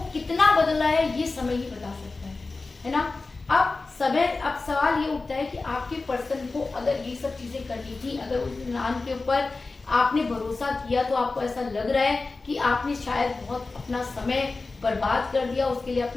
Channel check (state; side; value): quieter; right; 3.7 dB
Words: कितना बदला है ये समय ही बता सकता है ना। अब सवाल ये उठता है कि आपके पर्सन को अगर ये सब चीजें करनी थी, अगर उस इंसान के ऊपर आपने भरोसा किया, तो आपको ऐसा लग रहा है कि आपने शायद बहुत अपना समय बर्बाद कर दिया, उसके लिए